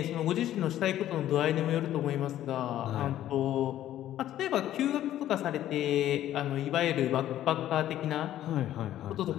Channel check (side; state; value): right; quieter; 12.6 dB